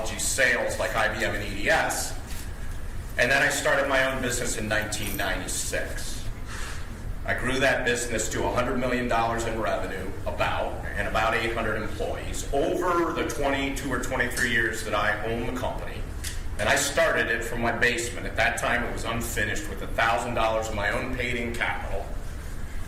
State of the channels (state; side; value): identical; both; correlation 1.00